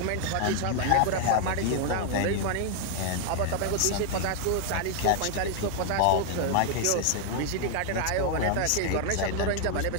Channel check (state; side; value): different; both; correlation 0.00